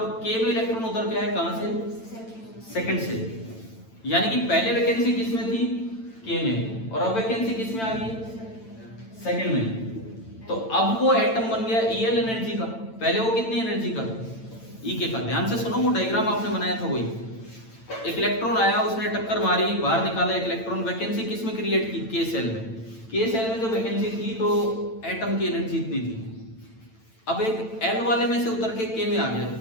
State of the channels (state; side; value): late; right; 9.0 ms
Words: के में इलेक्ट्रॉन उधर के आए, कहां से, सेकंड से। यानी कि पहले वैकेंसी किस में थी, के में, और अब वैकेंसी किस में आ गई, सेकंड में। तो अब वो एटम बन गया ईएल एनर्जी का, पहले वो कितनी एनर्जी का, ई के का। ध्यान से सुनो, वो डायग्राम आपने बनाया था वही, एक इलेक्ट्रॉन आया, उसने टक्कर मारी, बाहर निकाला एक इलेक्ट्रॉन, वैकेंसी किस में क्रिएट की, के सेल में। के सेल में जो वैकेंसी थी तो एटम की एनर्जी इतनी थी। अब एक एल वाले में से उतर के के में आ गया,